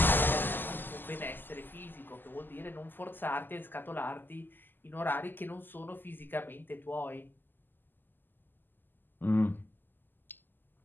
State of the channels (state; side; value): late; right; 0.092 ms